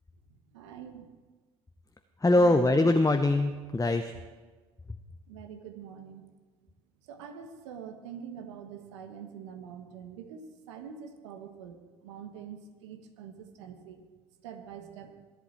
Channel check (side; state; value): both; normal; correlation 0.80